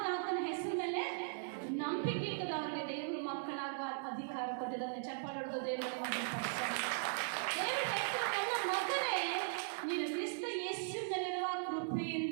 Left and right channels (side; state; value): left; silent; digital silence